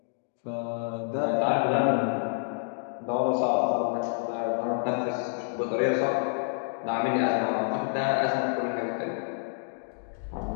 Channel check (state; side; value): silent; right; digital silence